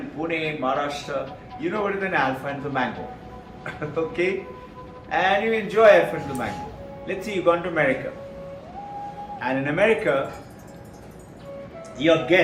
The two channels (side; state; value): both; identical; correlation 1.00